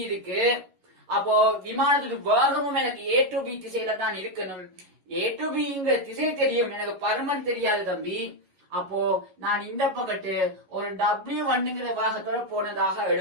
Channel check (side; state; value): left; late; 11 ms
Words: இருக்கு. அப்போ விமானத்துடைய வேகமும் எனக்கு A to B திசையில தான் இருக்கணும். A to Bங்கிற திசை தெரியும், எனக்கு பருமன் தெரியாது தம்பி. அப்போ நான் இந்த பக்கத்து ஒரு W1ங்கிற வேகத்தோட போனதாக